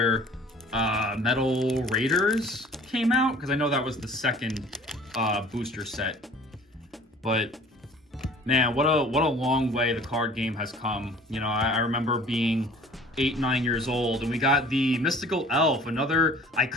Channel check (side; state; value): both; normal; correlation 0.49